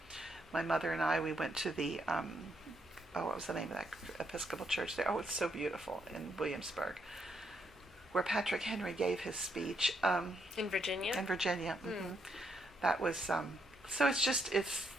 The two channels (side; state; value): both; normal; correlation 0.76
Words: My mother and I, we went to the what was the name of that Episcopal church there? Oh, it's so beautiful in Williamsburg, where Patrick Henry gave his speech. In Virginia. In Virginia. Mm-hmm. That was so. It's just it's